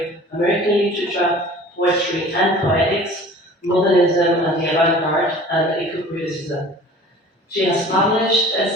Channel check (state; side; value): normal; both; correlation 0.44